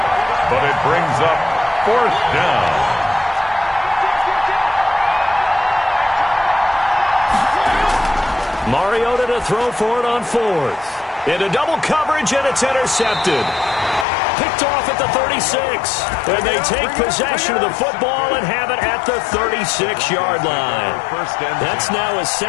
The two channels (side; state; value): right; drops out; at 14.1 s